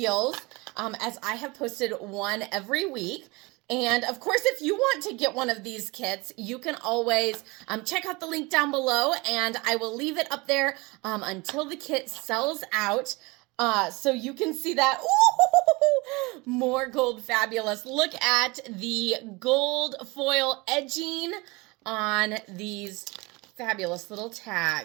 as I have posted one every week. And, of course, if you want to get one of these kits, you can always check out the link down below. And I will leave it up there until the kit sells out. So you can see that. Ooh, more gold fabulous. Look at the gold foil edging on these fabulous little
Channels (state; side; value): quieter; left; 25.0 dB